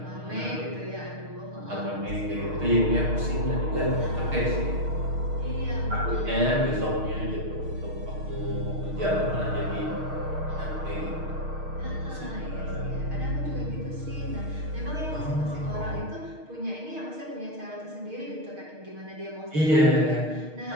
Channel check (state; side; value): late; left; 6.5 ms